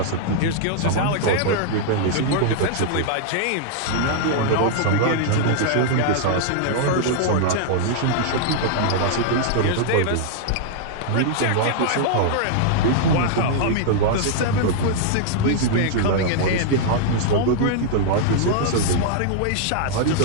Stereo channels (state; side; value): different; both; correlation -0.01